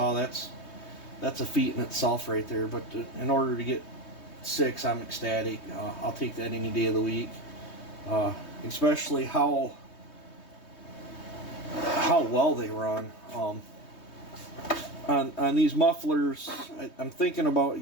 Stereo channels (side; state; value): right; late; 3.2 ms